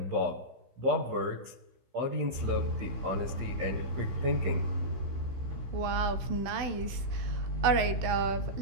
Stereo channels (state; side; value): late; left; 16 ms